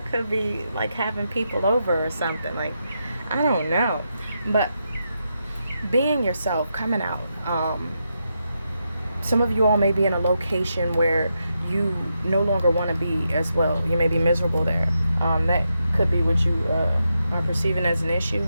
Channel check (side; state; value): both; inverted; correlation -0.84